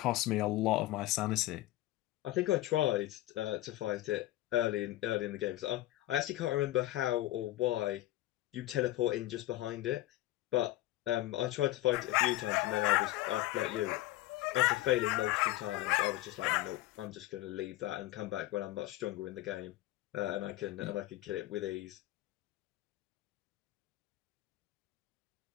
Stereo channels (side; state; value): right; quieter; 16.4 dB